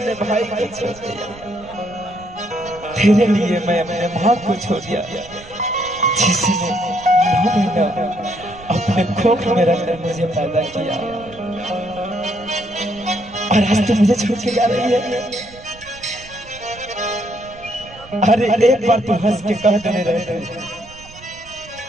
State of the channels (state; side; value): noise; right; rumble, 21 dB below the sound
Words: भाई को छोड़ दिया, तेरे लिए मैं अपने माँ को छोड़ दिया, जिसने 9 महीना अपने कोख में रखकर मुझे पैदा किया, और आज तो मुझे छोड़ के जा रही है। अरे एक बार तू हंस के कह देने रहे